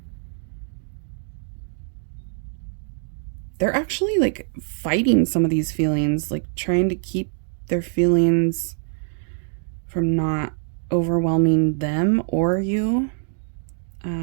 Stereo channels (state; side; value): silent; left; digital silence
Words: They're actually like fighting some of these feelings, like trying to keep their feelings from not overwhelming them or you.